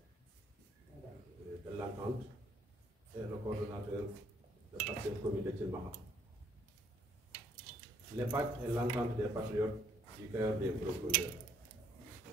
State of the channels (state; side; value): normal; both; correlation 0.66